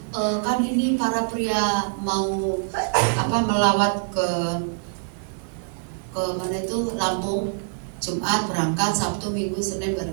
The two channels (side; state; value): left; silent; digital silence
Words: kan ini para pria mau melawat ke mana itu Lampung, Jumat berangkat, Sabtu, Minggu, Senin